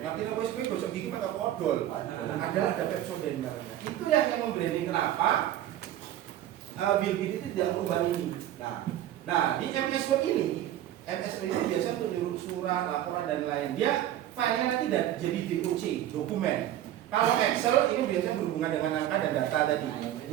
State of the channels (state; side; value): quieter; left; 12.4 dB